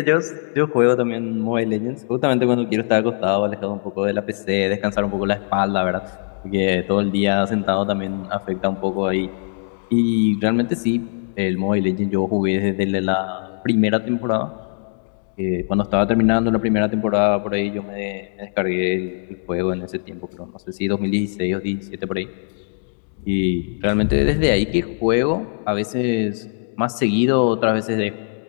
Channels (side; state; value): right; silent; digital silence